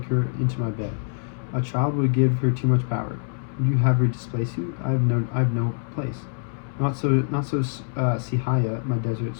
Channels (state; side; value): silent; right; 62 dB below the other